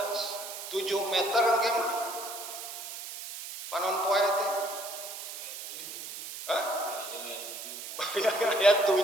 7 meter engke mah panon poe teh ya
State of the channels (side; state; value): right; noise; hiss, 9 dB below the sound